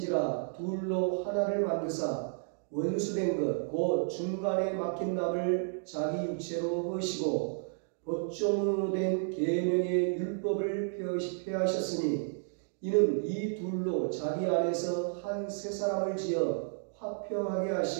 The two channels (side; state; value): left; silent; digital silence